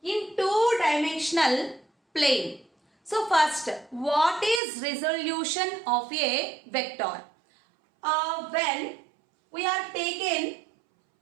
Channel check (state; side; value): drops out; left; at 4.6 s